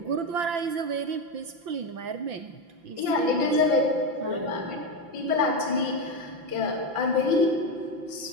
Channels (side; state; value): left; late; 5.9 ms